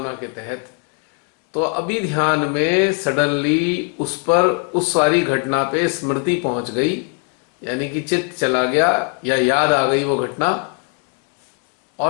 के तहत। तो अभी ध्यान में सडनली उस पर, उस सारी घटना पे स्मृति पहुंच गई, यानी कि चित्त चला गया या याद आ गई वो घटना,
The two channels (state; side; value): quieter; right; 35.2 dB